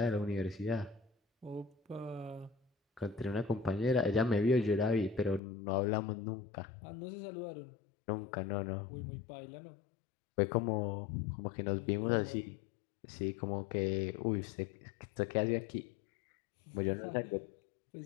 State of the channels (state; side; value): drops out; right; at 5.4 s